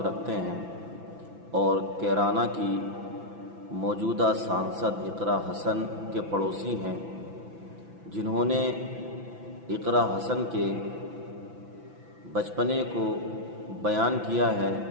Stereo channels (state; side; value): late; left; 6.0 ms